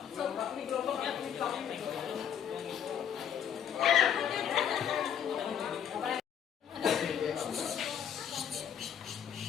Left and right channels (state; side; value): quieter; right; 8.7 dB